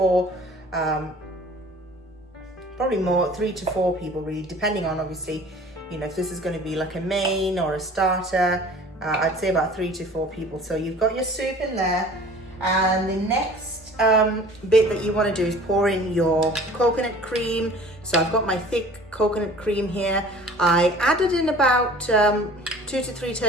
probably more, 3 to 4 people really, depending on obviously, if this is going to be like a main or a starter. I'd say about 3 to 4 people. So you've got your soup in there, and the next bit that you want to do is pour in your coconut cream. So I've got my thick coconut cream here. I added in about 2 to 3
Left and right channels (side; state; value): both; normal; correlation 0.47